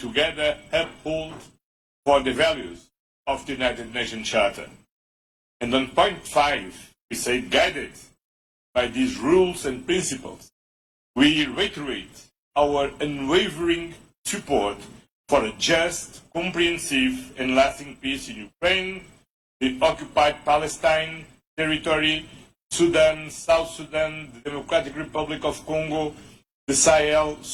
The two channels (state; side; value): identical; both; correlation 1.00